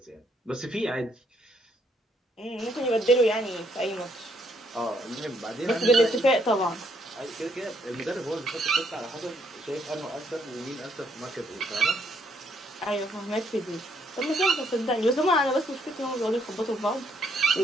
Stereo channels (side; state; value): both; normal; correlation 0.72